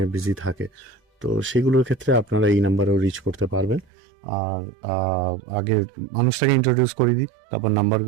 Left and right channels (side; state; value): left; drops out; at 3.9 s